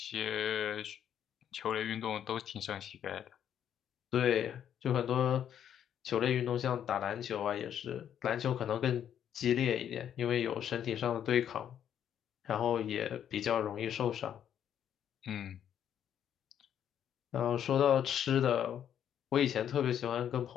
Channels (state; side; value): quieter; right; 9.6 dB